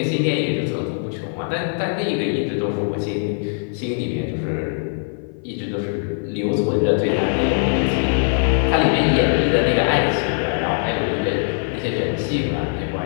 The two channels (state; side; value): silent; right; 55 dB below the other